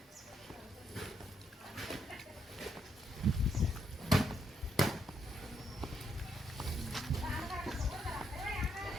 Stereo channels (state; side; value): normal; both; correlation 0.76